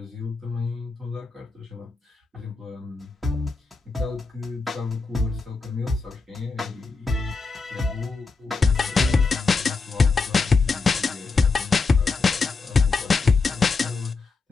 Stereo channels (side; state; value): right; quieter; 4.3 dB